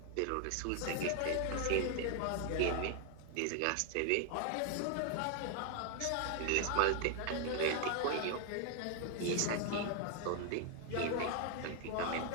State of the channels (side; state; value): both; different; correlation 0.00